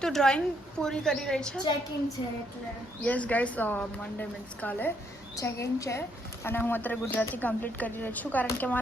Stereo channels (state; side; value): normal; both; correlation 0.72